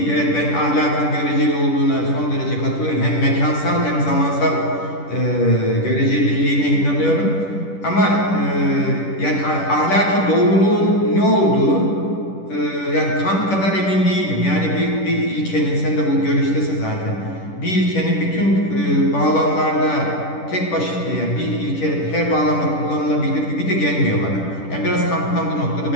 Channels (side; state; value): right; late; 10 ms